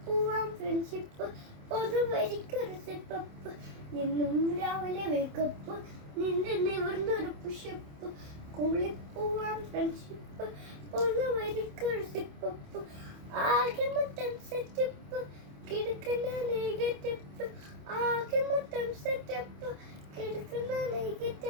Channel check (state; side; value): late; left; 27 ms